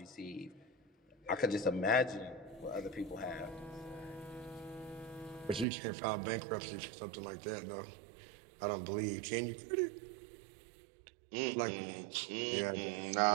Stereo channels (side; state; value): left; drops out; at 5.7 s